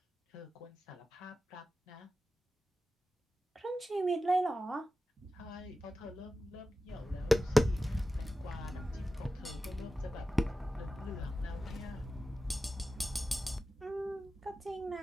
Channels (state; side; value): normal; both; correlation 0.94